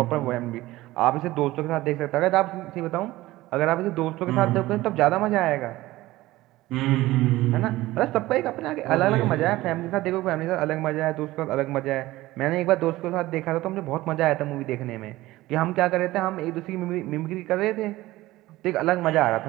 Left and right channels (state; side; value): quieter; left; 17.6 dB